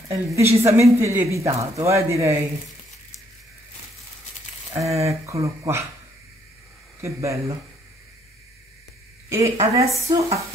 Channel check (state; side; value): normal; both; correlation 0.68